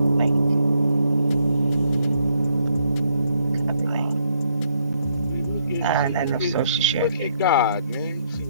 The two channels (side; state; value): both; inverted; correlation -0.72